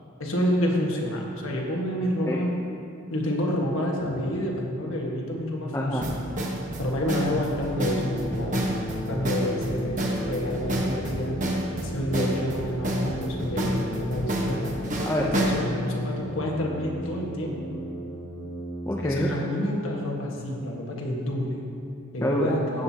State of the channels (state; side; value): normal; both; correlation 0.60